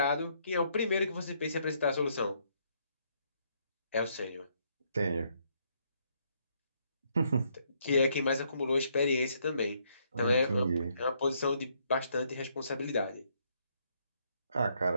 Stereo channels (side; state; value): both; inverted; correlation -0.72